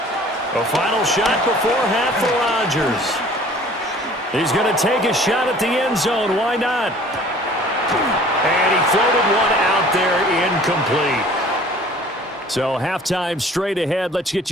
A final shot before half for Rodgers. He's going to take a shot at the end zone. Why not? And he floated one out there incomplete. So halftime straight ahead. Let's get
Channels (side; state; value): both; normal; correlation 0.50